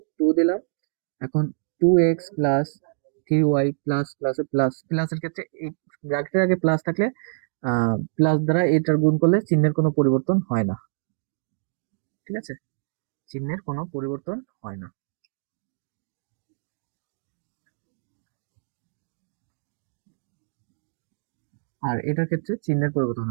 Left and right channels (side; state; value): left; silent; digital silence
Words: 2 দিলাম। এখন 2x plus 3y plus plus plus প্লাসের ক্ষেত্রে এই ব্র্যাকেটের আগে প্লাস থাকলে প্লাস দ্বারা এটার গুণ করলে চিহ্নের কোনো পরিবর্তন হয় না। ঠিক আছে, চিহ্নের কোনো পরিবর্তন হয় না। আর এটার ক্ষেত্রে চিহ্নের পরিবর্তন